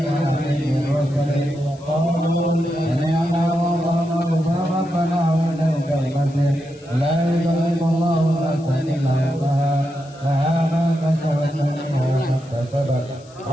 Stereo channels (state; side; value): noise; left; hiss, 26 dB below the sound